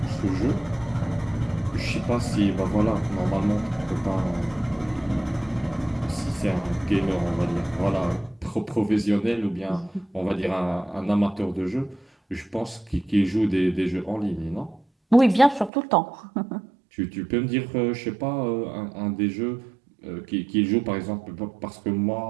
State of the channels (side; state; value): left; drops out; at 15.7 s